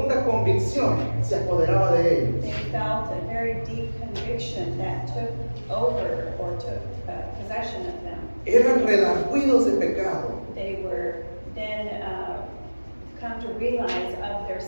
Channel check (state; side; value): inverted; both; correlation -1.00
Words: convicción se apoderaba de ellos. They felt a very deep conviction that took over or took possession of them. Eran redargüidos de pecado. They were then come to realize of their